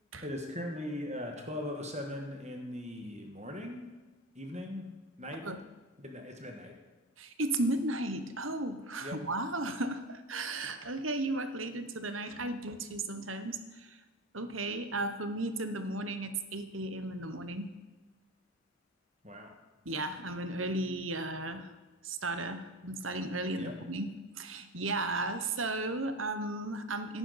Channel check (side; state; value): both; normal; correlation 0.27